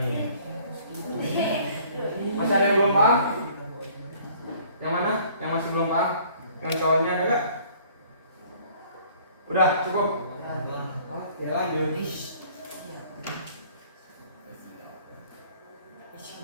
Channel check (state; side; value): inverted; both; correlation -0.56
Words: Masih ada yang belum paham? Yang mana? Yang masih belum paham? Yang cowoknya ada gak? Udah cukup? Oke lanjut.